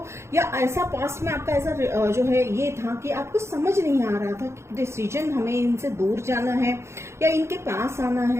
या ऐसा पास्ट में आपका ऐसा जो है ये था कि आपको समझ नहीं आ रहा था कि डिसीजन हमें इनसे दूर जाना है या इनके पास आना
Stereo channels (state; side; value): late; left; 0.13 ms